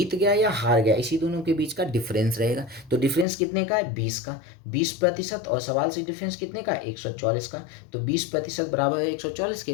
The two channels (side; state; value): right; drops out; at 3.2 s